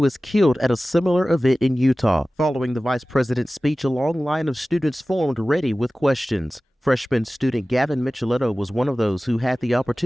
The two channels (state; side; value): normal; both; correlation 0.97